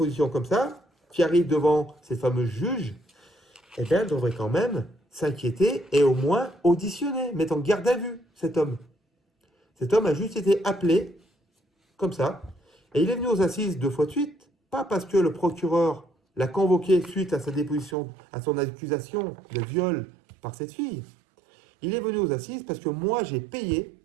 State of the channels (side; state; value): left; drops out; at 17.9 s